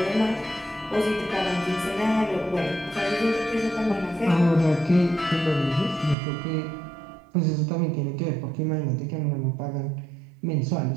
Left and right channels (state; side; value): drops out; left; at 6.2 s